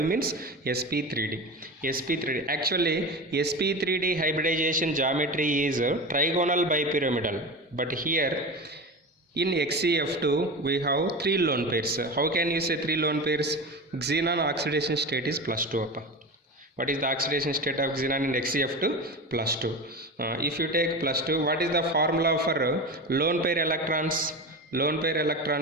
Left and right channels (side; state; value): both; normal; correlation 0.26